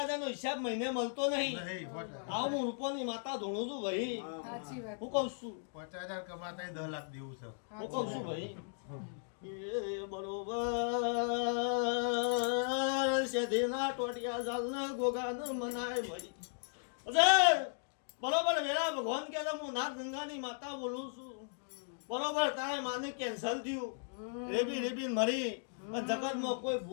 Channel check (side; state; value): right; silent; digital silence